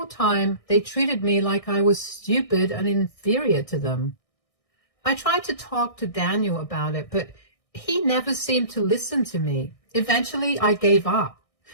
time they treated me like I was stupid and inferior to them. I tried to talk to Daniel about it, but he never seemed to listen to me. Eventually, I gave up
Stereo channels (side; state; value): right; late; 1.6 ms